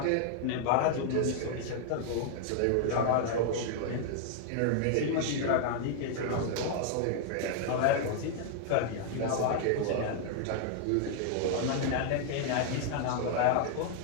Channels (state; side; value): different; both; correlation 0.00